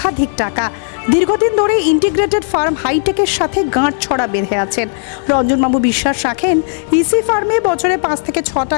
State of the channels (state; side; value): silent; right; digital silence